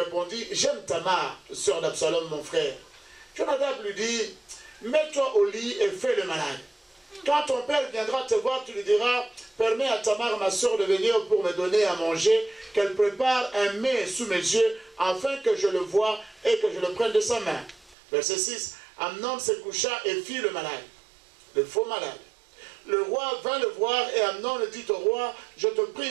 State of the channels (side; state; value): left; drops out; at 17.9 s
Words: j'aime Tamar, sœur d'Absalom mon frère. Jonadab lui dit, mets-toi au lit et fais le malade. Quand ton père viendra te voir, tu lui diras, permets à Tamar, ma sœur, de venir pour me donner à manger, qu'elle prépare un mets sous mes yeux, afin que je le voie et que je le prenne de sa main. Verset 6, Amnon se coucha et fit le malade, le faux malade. Le roi vint le voir et Amnon dit au roi, je te